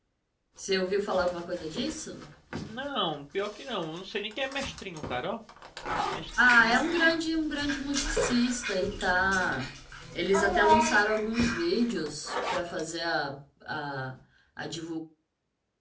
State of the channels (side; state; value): both; identical; correlation 1.00